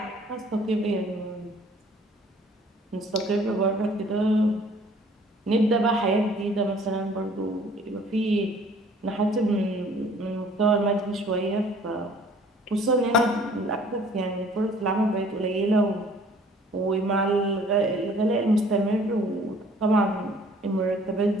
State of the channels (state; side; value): normal; both; correlation 0.55